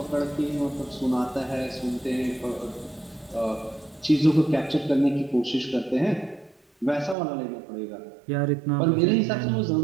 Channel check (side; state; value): left; drops out; at 7.2 s